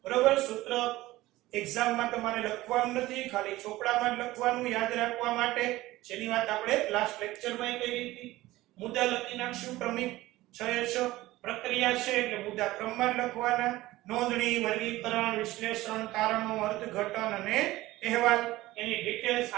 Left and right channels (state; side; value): quieter; left; 17.6 dB